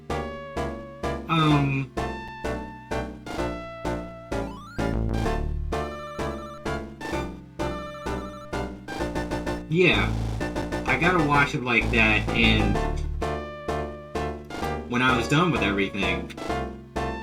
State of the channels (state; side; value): identical; both; correlation 1.00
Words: Yeah, I gotta watch it like that, and when I was done with everything,